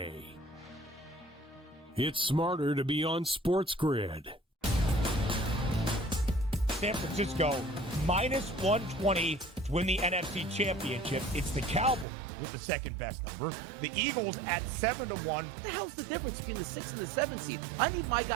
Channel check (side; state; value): left; drops out; at 12.1 s